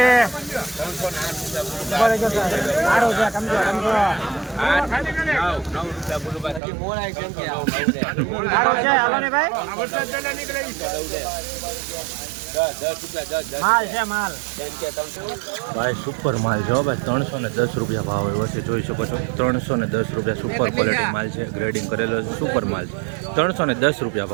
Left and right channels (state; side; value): drops out; left; at 6.6 s